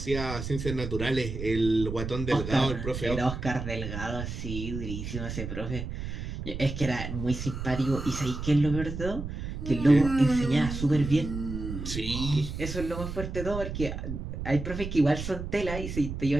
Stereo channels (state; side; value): noise; right; rumble, 6 dB below the sound